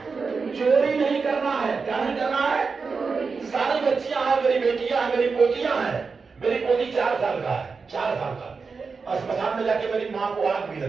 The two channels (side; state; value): left; quieter; 4.8 dB